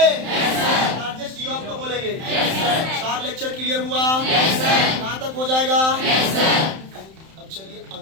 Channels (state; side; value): late; left; 31 ms